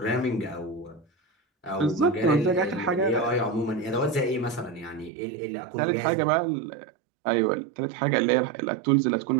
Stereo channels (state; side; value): drops out; left; at 5.1 s